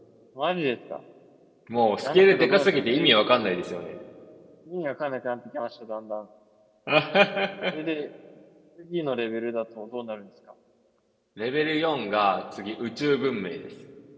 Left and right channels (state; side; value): identical; both; correlation 1.00